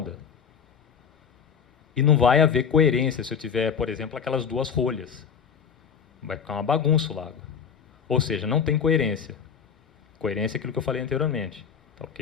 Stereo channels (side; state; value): right; quieter; 7.0 dB